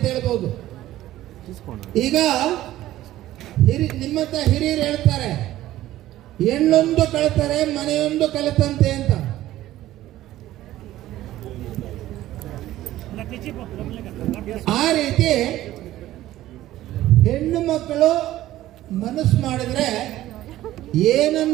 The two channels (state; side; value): quieter; left; 14.6 dB